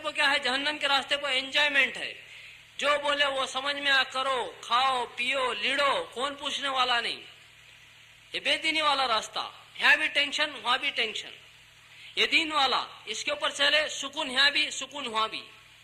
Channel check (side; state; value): both; identical; correlation 1.00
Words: کیا ہے, جہنم کے راستے پہ انجوائمنٹ ہے. جو بولے وہ سمجھ میں کرو, کھاؤ پیو لیڑو, کون پوچھنے والا نہیں. یہ بے دینی والا راستہ, یہاں بھی ٹینشن وہاں بھی ٹینشن. یہ دین والا, اس کے اوپر چلے, سکون یہاں بھی سکون وہاں بھی.